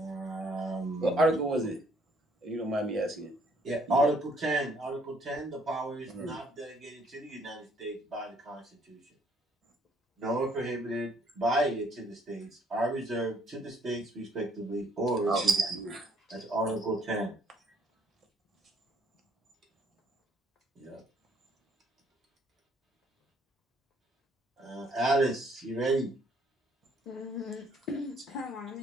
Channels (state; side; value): normal; both; correlation 0.64